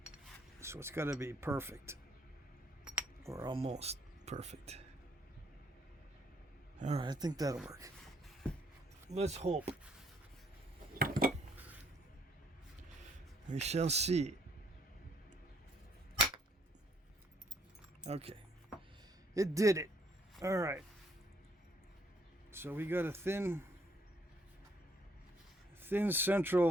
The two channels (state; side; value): normal; both; correlation 0.67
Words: So it's got to be perfect, or almost perfect. All right, I think that'll work. Let's hope. We shall see. Okay, it did it. All right. So we got a thin